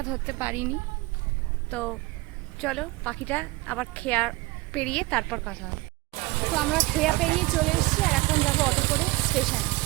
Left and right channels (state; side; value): quieter; left; 21.9 dB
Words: ধরতে পারিনি, তো চলো পাখিটা আবার খেয়া পেরিয়ে তারপর কথা হবে। তো আমরা খেয়া পেরিয়ে চলে এসেছি আর এখন যাবো অটো করে স্টেশনে।